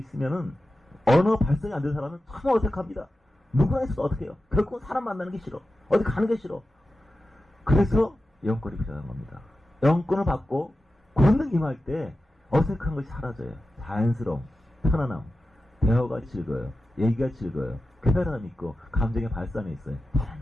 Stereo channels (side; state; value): both; normal; correlation 0.93